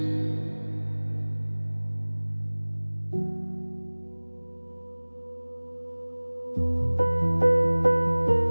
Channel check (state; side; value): inverted; both; correlation -1.00